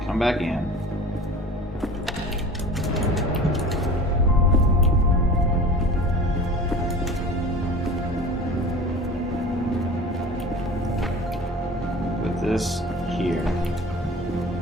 come back in. Put this here.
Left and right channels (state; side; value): normal; both; correlation 0.39